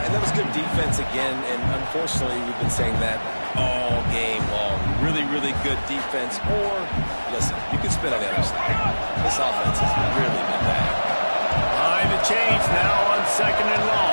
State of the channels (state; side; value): inverted; both; correlation -1.00